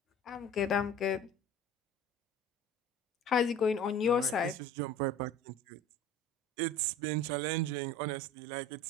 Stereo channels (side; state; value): both; normal; correlation 0.42